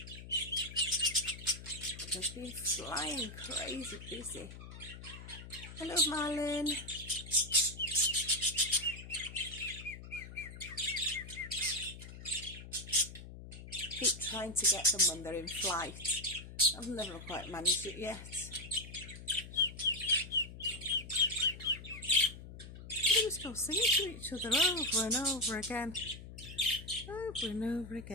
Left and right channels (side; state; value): left; noise; hum, 13 dB below the sound